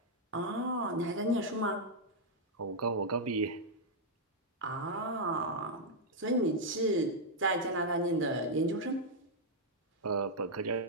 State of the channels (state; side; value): normal; both; correlation -0.04